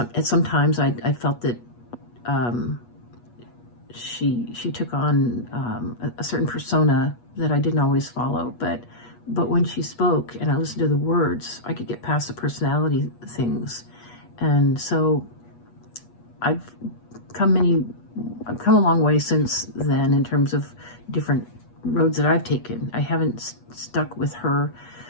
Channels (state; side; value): late; right; 8.4 ms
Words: times I felt that she took on a certain persona that I didn't always follow, but when she spoke and I listened to the words, I could get past the personality things. And so I've come a long way since then in terms of different roads that I've taken. I haven't stuck with her